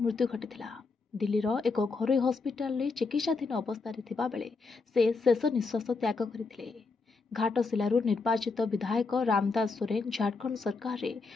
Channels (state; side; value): quieter; right; 4.2 dB